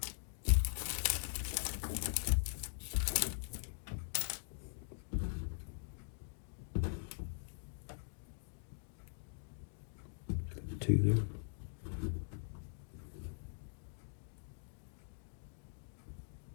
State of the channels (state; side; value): silent; right; digital silence